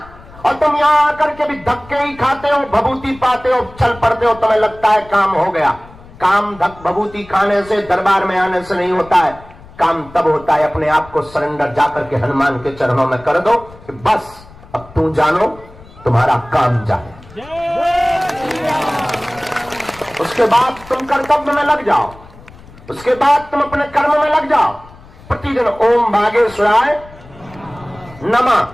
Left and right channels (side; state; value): left; noise; rumble, 21 dB below the sound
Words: और तुम यहां आकर के भी धक्के ही खाते हो, भभूति पाते हो, चल पड़ते हो, तुम्हें लगता है काम हो गया। काम भभूति खाने से, दरबार में आने से नहीं होता है। काम तब होता है अपने आप को सरेंडर जाकर के हनुमान के चरणों में कर दो कि बस अब तू जानो, तुम्हारा काम जाने। उसके बाद तुम कर्तव्य में लग जाओ, उसके बाद तुम अपने कर्म में लग जाओ। प्रतिदिन ओम बागेश्वराय